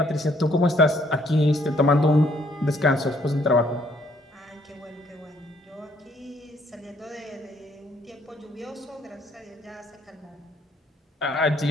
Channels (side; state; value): both; normal; correlation 0.66